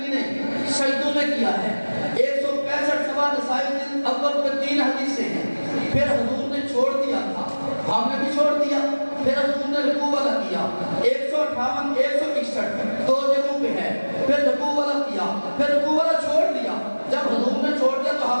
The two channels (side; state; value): both; inverted; correlation -1.00